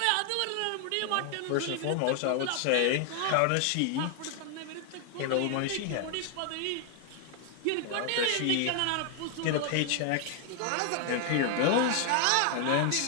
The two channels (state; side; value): different; both; correlation 0.00